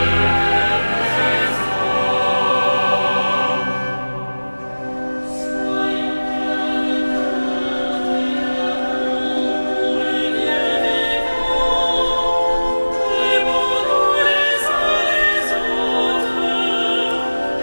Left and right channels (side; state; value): both; inverted; correlation -1.00